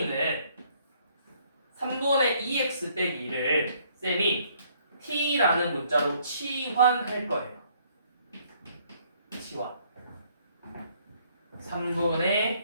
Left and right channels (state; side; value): inverted; both; correlation -0.65